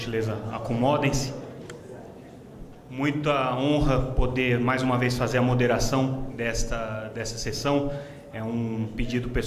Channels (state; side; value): identical; both; correlation 1.00